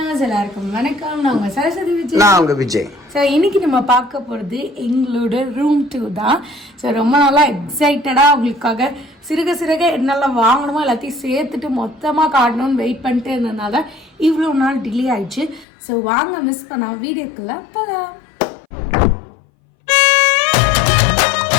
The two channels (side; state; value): right; drops out; at 15.7 s